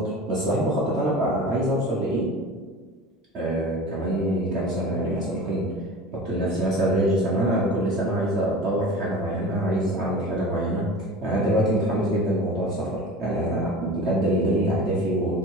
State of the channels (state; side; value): normal; both; correlation 0.36